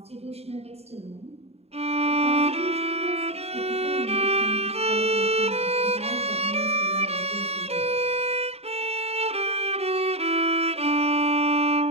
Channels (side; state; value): left; late; 0.30 ms